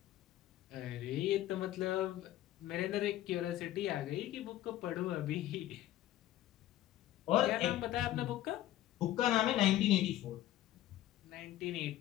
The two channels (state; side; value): quieter; right; 13.8 dB